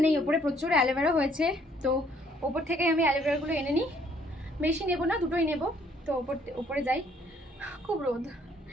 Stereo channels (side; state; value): both; normal; correlation 0.64